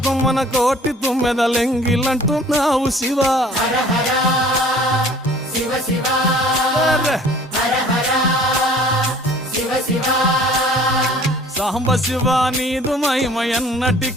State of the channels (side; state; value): both; normal; correlation 0.51